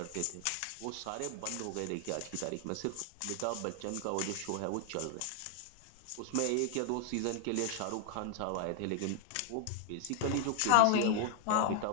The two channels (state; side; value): different; both; correlation 0.00